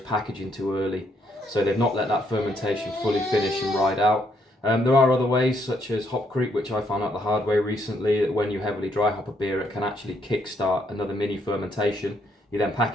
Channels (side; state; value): both; normal; correlation 0.72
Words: packaging too early. So they've not let that fermentation fully finish and ride out. There are other ways, such as hop creep, which I found out the hard way recently, that when you heavily dry hop a beer, it can actually kickstart another mini fermentation. You then